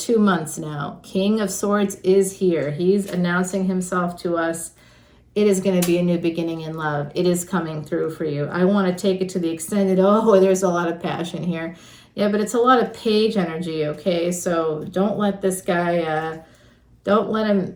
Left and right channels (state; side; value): identical; both; correlation 1.00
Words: months now. King of Swords is here. He's announcing himself to us. It is going to be a new beginning in love. It is coming through for you. I want to take it to the extended. Oh, there's a lot of passion here. Yeah, but it's a lot of page energy, okay? So don't let this guy, don't let